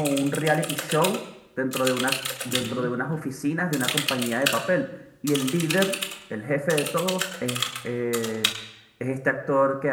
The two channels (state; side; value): identical; both; correlation 1.00